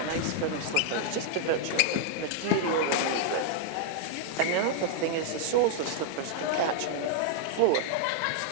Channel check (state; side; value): different; both; correlation -0.01